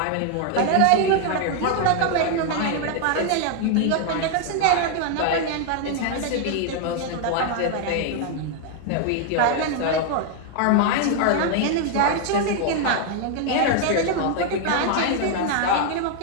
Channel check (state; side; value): different; both; correlation 0.00